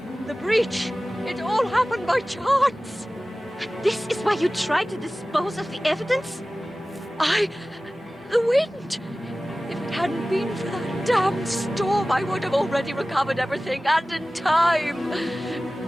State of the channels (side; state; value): both; normal; correlation 0.97